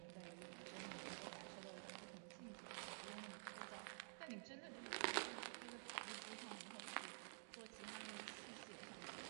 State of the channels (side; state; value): left; silent; digital silence